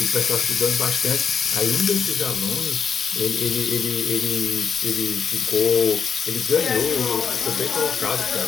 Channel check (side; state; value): right; quieter; 6.5 dB